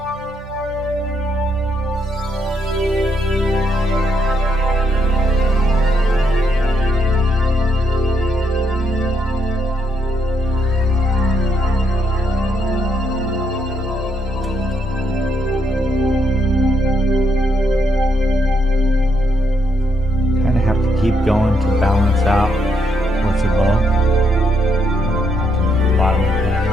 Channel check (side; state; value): both; normal; correlation 0.76